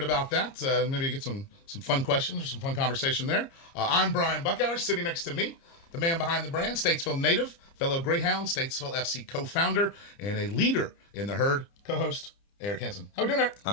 about that. Maybe get some fun questions or some fun conversation there. I'm Brian Buckhour. Sitting next to me, the man behind the brand, Statesville native, fellow Greyhound, Statesville FC co-founder, and a leader in the herd, co-host, Eric Hansen. How we doing, Eric?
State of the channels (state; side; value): late; right; 30 ms